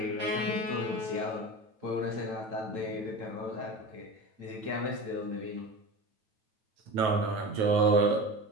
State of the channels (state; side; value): late; left; 9.3 ms